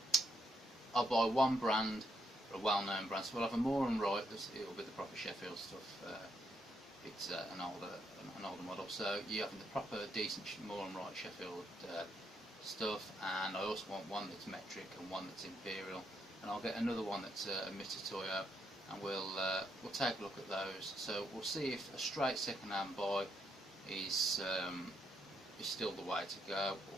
I'll buy one brand, or a well-known brand. So we'll have a Moore and Wright. It'll be the proper Sheffield stuff. It's an older model. So you have the proper, decent Moore and Wright Sheffield stuff. And I also want one that's metric and one that's imperial. And I'll get another one that's a Mitutoyo, and we'll take a look at those. So we'll see if a straight second-hand buy is still the way to go,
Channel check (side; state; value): both; normal; correlation 0.76